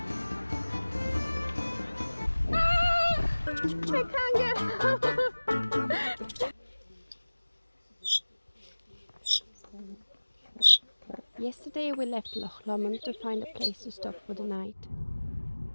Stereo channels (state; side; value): inverted; both; correlation -1.00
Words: I can't get out. Yesterday we left Loch Lomond to find a place to stop for the night.